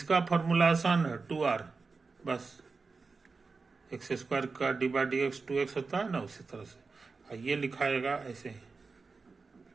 फॉर्मूला आसान है, 2r, बस एक्स स्क्वायर का D by D x 2x होता है ना, उसी तरह से ये लिखाएगा ऐसे ही,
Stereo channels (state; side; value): quieter; left; 4.3 dB